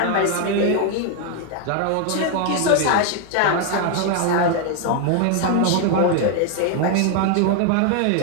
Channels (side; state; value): both; different; correlation 0.01